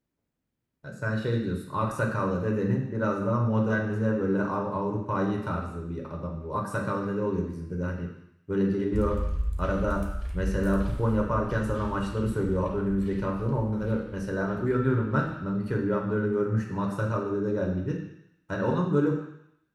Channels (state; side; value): identical; both; correlation 1.00